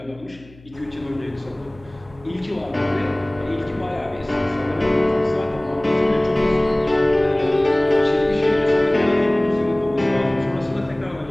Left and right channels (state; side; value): noise; left; hum, 24 dB below the sound